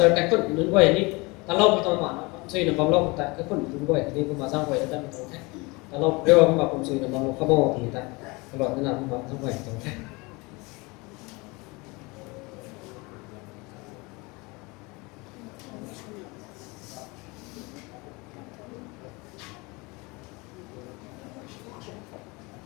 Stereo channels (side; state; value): right; quieter; 25.8 dB